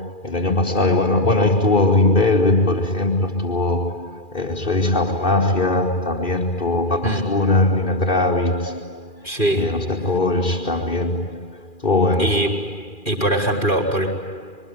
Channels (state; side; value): late; right; 2.4 ms